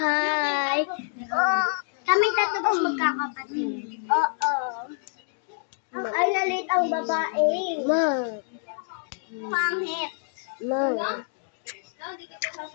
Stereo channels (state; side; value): silent; right; digital silence